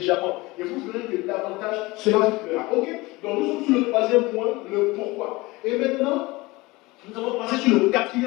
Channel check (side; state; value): right; quieter; 22.0 dB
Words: Et vous verrez que davantage cela vous fera. Ok? Donc nous sommes sur le troisième point, le pourquoi. Et maintenant, nous allons passer sur le